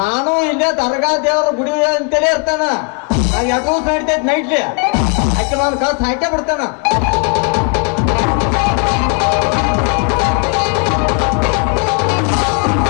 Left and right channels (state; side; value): quieter; right; 37.8 dB